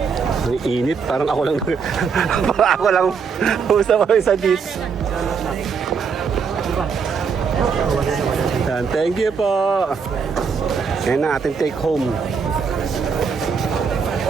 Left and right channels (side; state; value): left; quieter; 5.8 dB